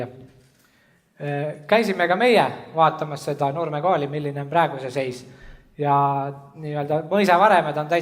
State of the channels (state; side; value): identical; both; correlation 1.00